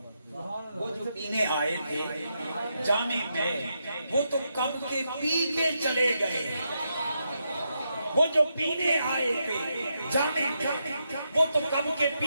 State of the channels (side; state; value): both; inverted; correlation -0.83